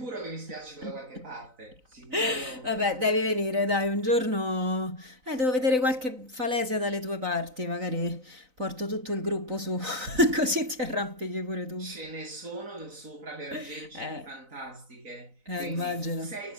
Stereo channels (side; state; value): left; late; 3.9 ms